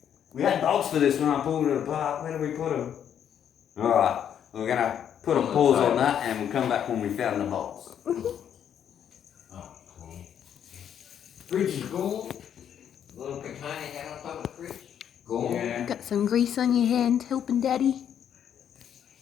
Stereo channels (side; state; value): right; quieter; 9.1 dB